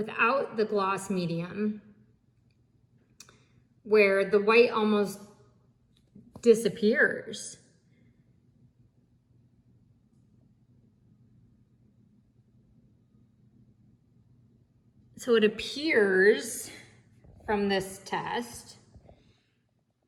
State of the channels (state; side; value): identical; both; correlation 1.00